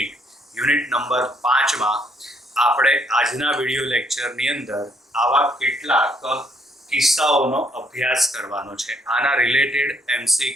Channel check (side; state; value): both; normal; correlation 0.69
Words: યુનિટ નંબર 5માં આપણે આજના વિડીયો લેક્ચરની અંદર આવા કેટલાક કિસ્સાઓનો અભ્યાસ કરવાનો છે। આના રિલેટેડ